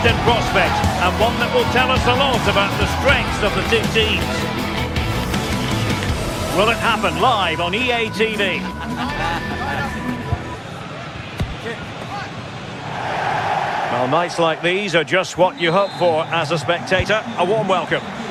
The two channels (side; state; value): both; identical; correlation 1.00